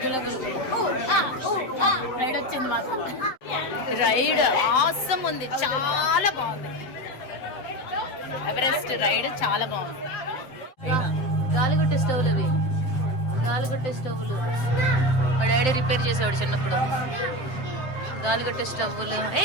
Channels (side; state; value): right; late; 7.7 ms